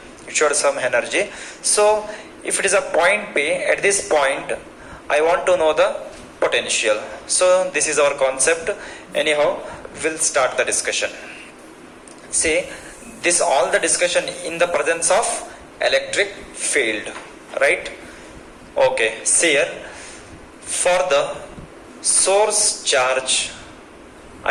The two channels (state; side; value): identical; both; correlation 1.00